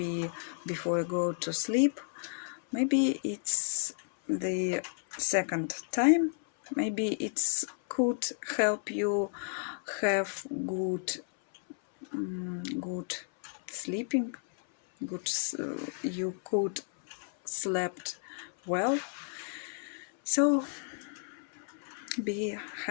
before you go to sleep. Maybe it's the second time. Maybe it's could help you have good sleeping. You could slept well. So be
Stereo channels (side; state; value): right; silent; 56 dB below the other